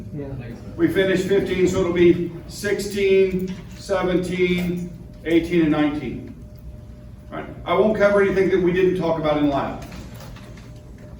Yeah. We finished 15, so it'll be 16, 17, 18, and 19. All right. I won't cover anything that we didn't talk about in lab.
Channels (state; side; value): identical; both; correlation 1.00